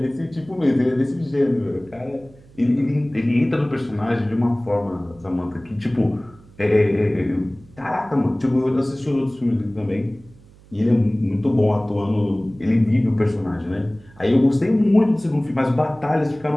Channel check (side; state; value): right; noise; hum, 25 dB below the sound